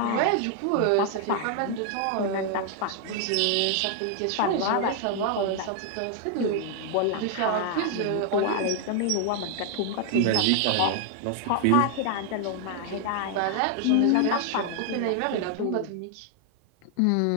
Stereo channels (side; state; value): both; different; correlation 0.00